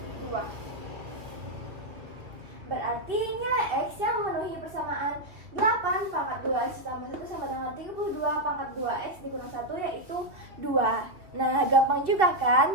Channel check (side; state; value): left; late; 3.0 ms